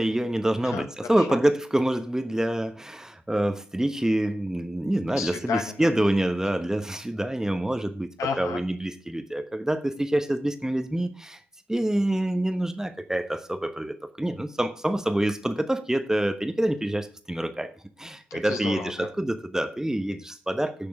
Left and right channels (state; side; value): normal; both; correlation 0.96